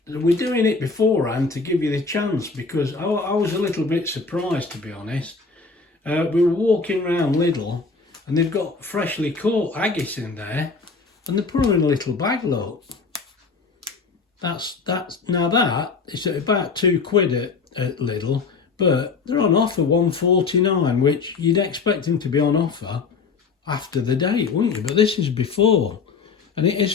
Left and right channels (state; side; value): quieter; right; 4.6 dB